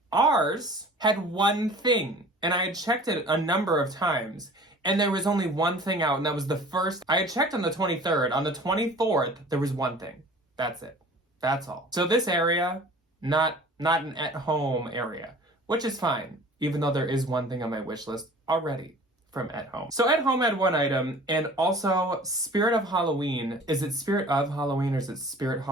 Ours had one thing, and I had checked it a number of times, and there was only one thing out, and that was the first. I had checked on the 23rd. On the 24th, there was one thing. That's it. That's all. So this area, not an at-home area, which is fine, even though there is one thing on my wish list already from At Home. So At Home had one item, and also Spirit of Halloween. Is it Spirit of Halloween, or is it Spirit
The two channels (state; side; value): normal; both; correlation 0.46